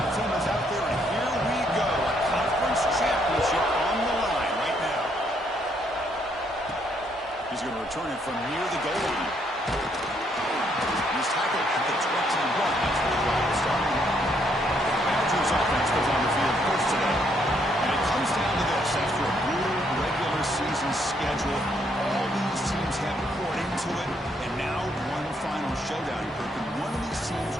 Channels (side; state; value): both; normal; correlation 0.72